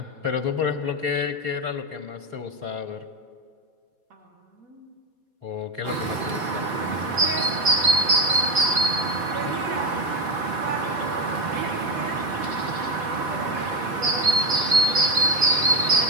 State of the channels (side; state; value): left; late; 4.3 ms